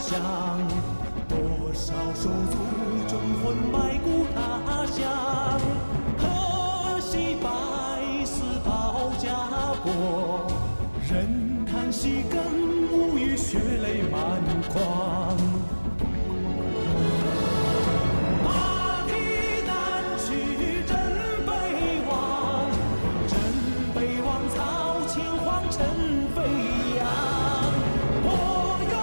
多少手足忠魂埋骨他乡。可惜百死保家国，人叹息更无语，血泪满眶。马蹄南去真北望，真北望曹秦皇城飞扬。我愿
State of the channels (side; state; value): both; inverted; correlation -1.00